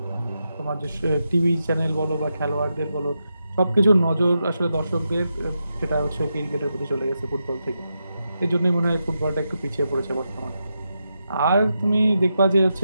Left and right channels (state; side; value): inverted; both; correlation -0.86